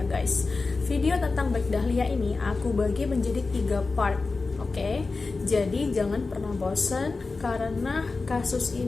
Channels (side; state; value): right; quieter; 3.9 dB